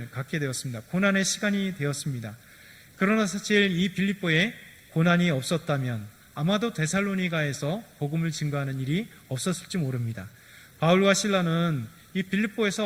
갖게 되었습니다. 고난의 시간이 되었습니다. 그러나 사실 이 빌립보에 고난이 없었다면 아마도 데살로니가에서 복음을 증거하는 일이 없었을지 모릅니다. 바울과 실라는 이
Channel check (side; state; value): both; identical; correlation 1.00